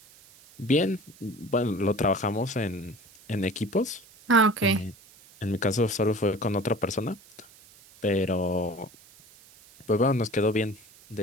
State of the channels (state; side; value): noise; right; hiss, 25 dB below the sound